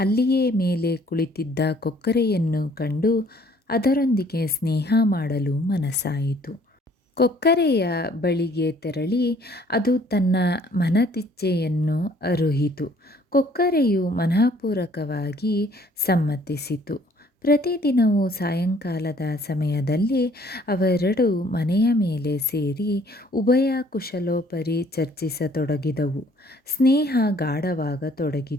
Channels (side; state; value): both; normal; correlation 0.59